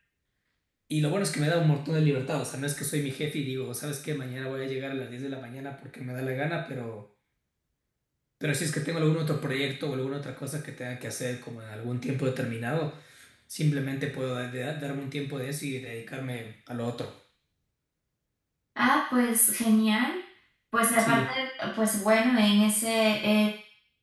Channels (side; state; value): both; identical; correlation 1.00